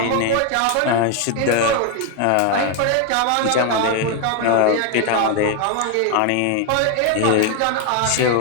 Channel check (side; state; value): both; different; correlation 0.01